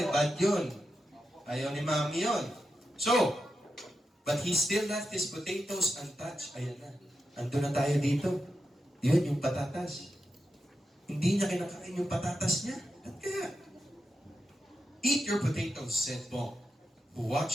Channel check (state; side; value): normal; both; correlation 0.88